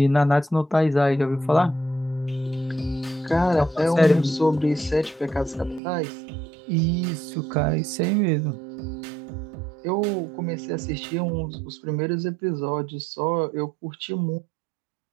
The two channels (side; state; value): left; drops out; at 5.8 s